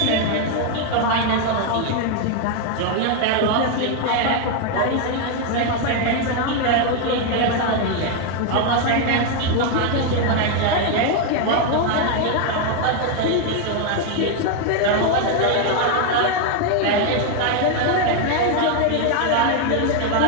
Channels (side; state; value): both; different; correlation 0.01